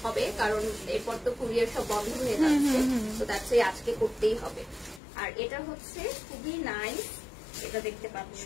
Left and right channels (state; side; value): drops out; right; at 5.0 s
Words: হবে, কারণ এরপর তো কুরিয়ার সব বন্ধ হয়ে যাচ্ছে, তো দ্যাটস ওয়াই আজকে করতেই হবে। আর এটা হচ্ছে খুবই নাইস, এটা দেখতে পাচ্ছ।